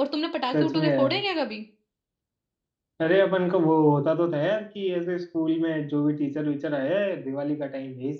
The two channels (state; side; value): identical; both; correlation 1.00